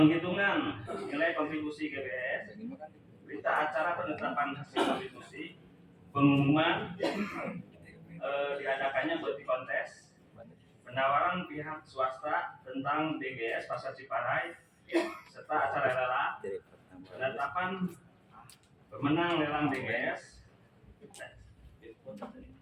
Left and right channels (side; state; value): both; identical; correlation 1.00